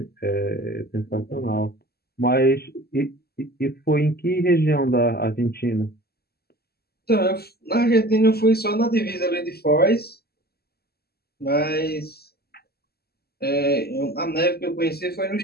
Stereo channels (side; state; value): right; late; 0.46 ms